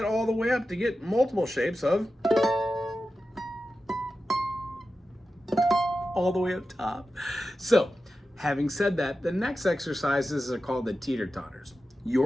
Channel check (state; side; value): normal; both; correlation 0.92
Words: all the way up to get multiple shapes of all the way up top. So, having said that, the next exercises are called the teeter-totters.